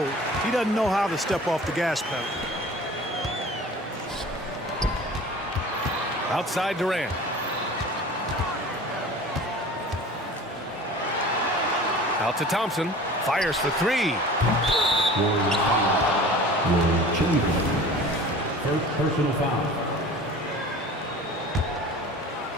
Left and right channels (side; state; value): both; normal; correlation 0.42